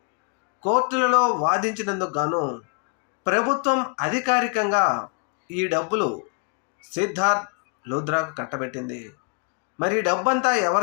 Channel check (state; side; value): quieter; right; 39.2 dB